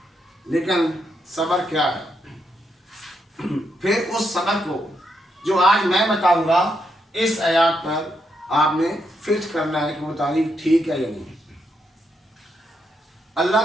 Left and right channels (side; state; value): both; normal; correlation 0.80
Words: لیکن صبر کیا ہے؟ پھر اس صبر کو جو آج میں بتاؤں گا، اس آیات پر آپ نے فٹ کرنا ہے کہ وہ تعریف ٹھیک ہے یا نہیں۔ اللہ